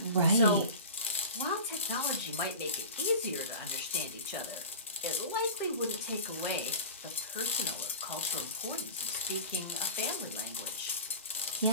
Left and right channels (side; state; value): both; inverted; correlation -0.33